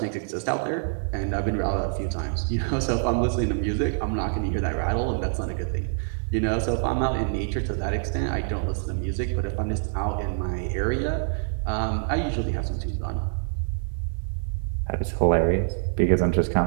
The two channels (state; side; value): silent; left; digital silence